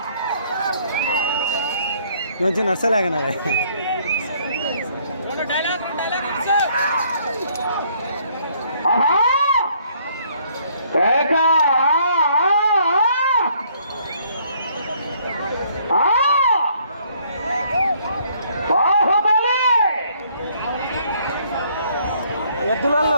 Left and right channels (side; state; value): both; inverted; correlation -0.65